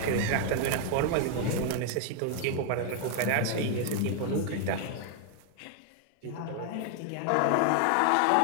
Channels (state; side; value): different; both; correlation 0.00